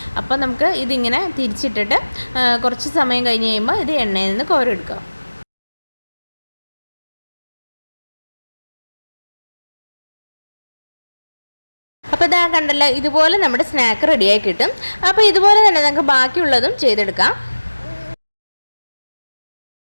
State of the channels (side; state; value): both; inverted; correlation -1.00